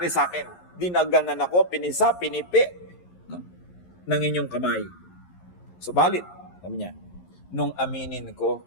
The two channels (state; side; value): late; right; 11 ms